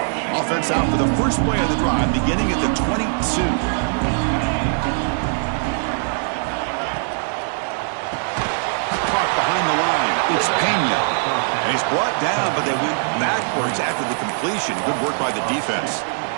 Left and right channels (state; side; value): silent; left; digital silence